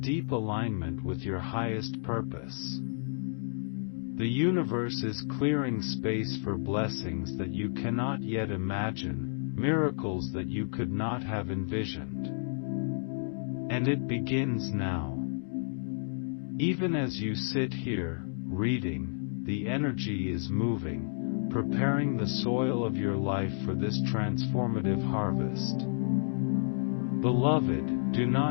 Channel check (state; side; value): silent; right; digital silence